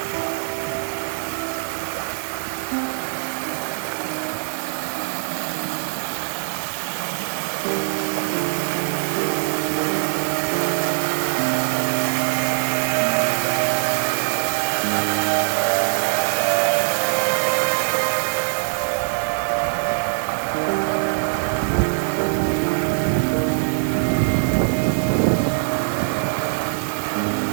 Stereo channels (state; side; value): silent; left; digital silence